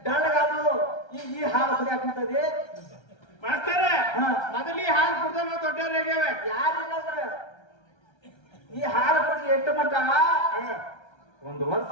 ಡಳ್ಳಗಾದು ಈ ಹಾಲು ಕುಡಿಯಾಕಂತದಿ ಮಾಸ್ತರ ಹಾ. ಮೊದಲಿ ಹಾಲು ಕುಡ್ದ ನಾವು ದೊಡ್ಡವ್ರಾಗ್ಯಾವ ಯಾರಿಲ್ಲಂದ್ರ ಈ ಹಾಲು ಕುಡಿದು ಎಷ್ಟು ಮಟ್ಟ ಒಂದು ವರ್ಷ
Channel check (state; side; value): late; right; 1.3 ms